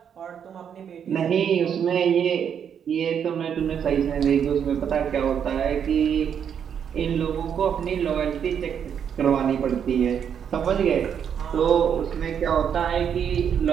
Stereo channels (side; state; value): left; quieter; 8.1 dB